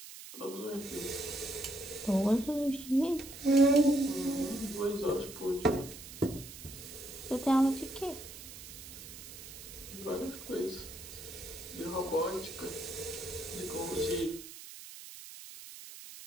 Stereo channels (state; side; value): noise; right; hiss, 14 dB below the sound